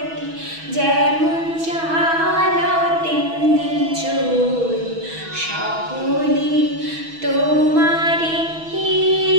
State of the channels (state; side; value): late; left; 6.2 ms